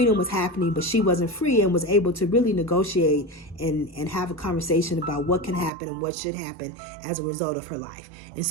was happening, but she wasn't free, and was able to really negotiate and have a conversation about what can happen and what should happen as a result of her life. And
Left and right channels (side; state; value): left; drops out; at 5.7 s